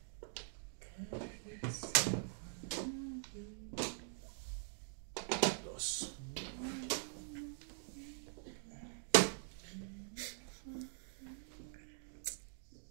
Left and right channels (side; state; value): left; silent; digital silence